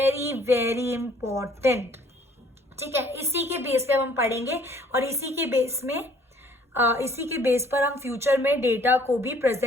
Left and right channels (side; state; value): both; normal; correlation 0.58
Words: very important. ठीक है, इसी के बेस पे हम पढ़ेंगे और इसी के बेस पर हम फ्यूचर में डेटा को भी